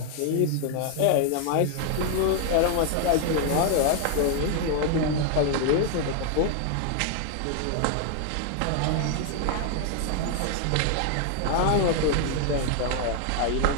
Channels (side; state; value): both; different; correlation 0.00